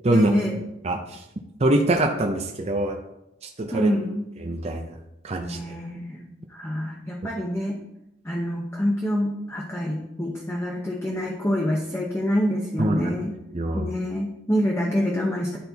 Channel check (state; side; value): normal; both; correlation 0.77